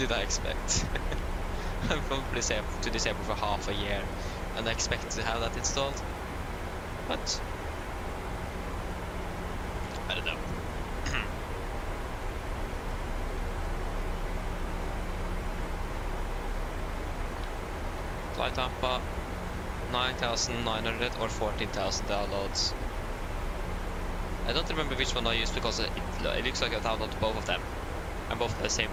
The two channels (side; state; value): both; identical; correlation 1.00